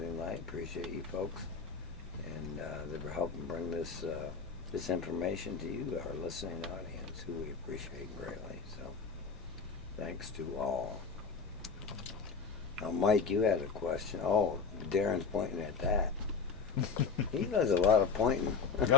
Light. Appreciate you folks. And they were helping bring this this information to you, our listening audience, who we appreciate greatly. So thanks to all. Now, Mike, you had a question. Oh, Darren's pointing at that. He does a lot of pointing.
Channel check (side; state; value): right; quieter; 5.3 dB